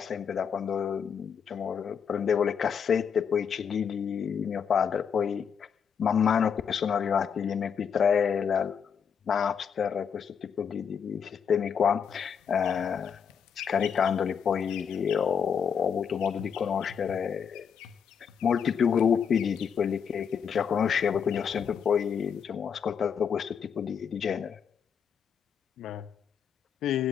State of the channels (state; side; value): quieter; right; 7.2 dB